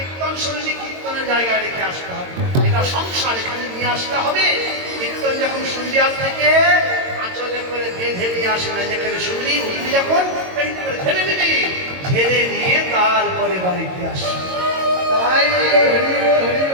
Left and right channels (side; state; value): left; late; 22 ms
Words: শুনলে কীর্তনের জায়গায় রেখে আসতে হবে, এটা সংসার, এখানে নিয়ে আসতে হবে। কীর্তন যখন শুনবি আজ থেকে আঁচলে করে বেঁধে নিয়ে আসে না, যেখানে শুনলি উঠবি যখন ঝেড়ে নিবি, ঝেড়ে নিয়ে তারপরে বাড়িতে আসবি। তাই